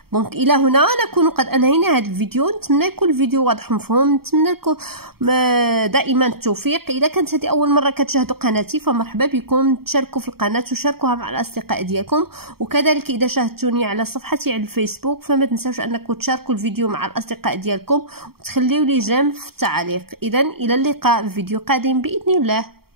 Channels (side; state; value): left; late; 0.95 ms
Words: دونك الى هنا نكون قد انهينا هذا الفيديو. نتمنى يكون الفيديو واضح ومفهوم. نتمنى لكم دائما التوفيق. اذا كانت هذه اول مره كتشاهدوا قناتي فمرحبا بكم، تشاركوا في القناه وشاركوها مع الاصدقاء ديالكم، وكذلك اذا شاهدتوني على صفحتي على الفيسبوك فما تنساوش انكم تشاركوا الفيديو مع الاصدقاء ديالكم وتخليوا لي جيم في التعليق. اذا الى اللقاء في فيديو قادم باذن الله.